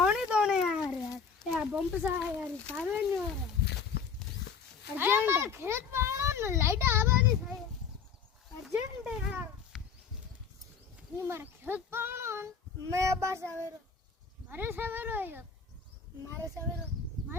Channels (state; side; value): quieter; right; 6.1 dB